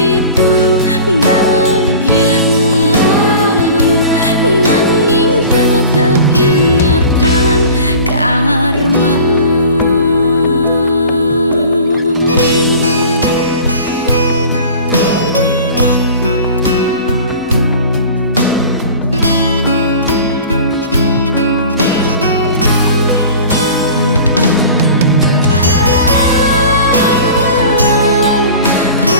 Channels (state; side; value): inverted; both; correlation -0.41